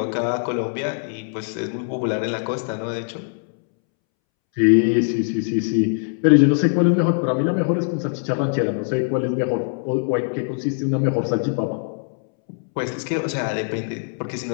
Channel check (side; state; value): right; silent; 64 dB below the other